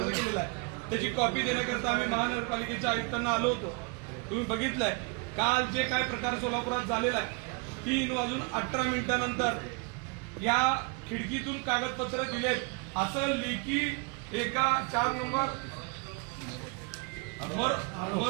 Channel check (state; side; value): quieter; left; 32.7 dB